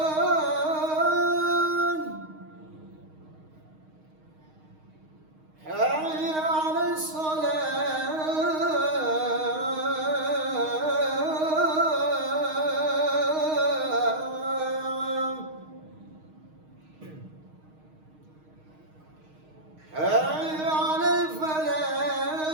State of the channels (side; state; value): left; late; 6.4 ms